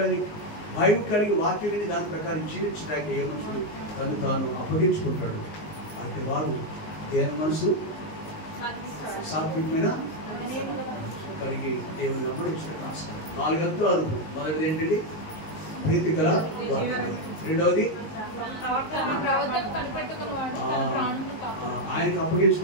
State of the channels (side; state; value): right; late; 19 ms